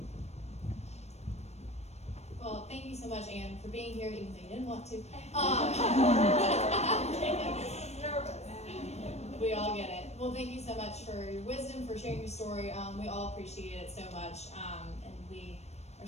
Well, Well, thank you so much, Anne, for being here, even though you didn't want to. Nervous. We all get it. Well, thank you so much for your wisdom, for sharing your story. We all appreciate it so much, and we are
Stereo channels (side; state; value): right; late; 0.31 ms